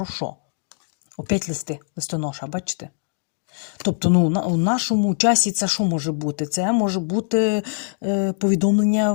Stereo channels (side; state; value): right; silent; digital silence